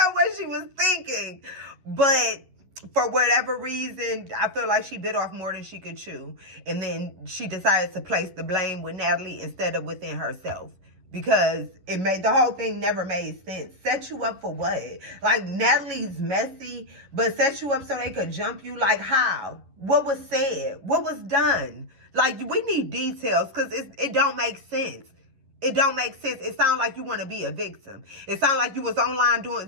what she was thinking. But for whatever reason, I feel like she bit off more than she could chew. And then she decided to place the blame with Natalie instead of within herself. Because the whole thing never made sense. Set you up for what? Like, Natalie's messy, but set you up so they could jump you? Like, how? What was said? What was done? Like, we need details, because it don't make sense. It don't make sense. It sounds like you want to be a victim. It sounds like you was online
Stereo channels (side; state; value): left; late; 11 ms